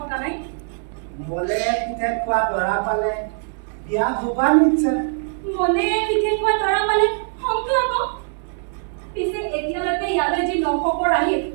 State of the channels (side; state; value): left; silent; digital silence